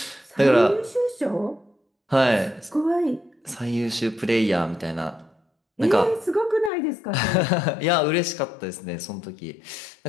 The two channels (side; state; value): right; drops out; at 6.7 s